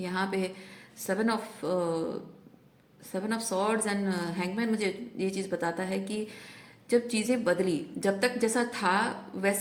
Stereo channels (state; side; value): identical; both; correlation 1.00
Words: यहाँ पे 7 ऑफ सॉर्ड्स एंड हैंगमैन मुझे ये चीज़ बताता है कि जब चीज़ें बदली, जब तक जैसा था